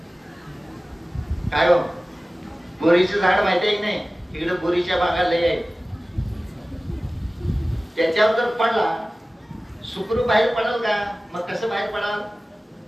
काय हो, बोरीचं झाड माहिती आहे की नाही, इकडे बोरीच्या बागा लय आहे, त्याच्यावर जर पडला सुखरूप बाहेर पडेल का? मग कसं बाहेर पडाल?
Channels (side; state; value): both; normal; correlation 0.97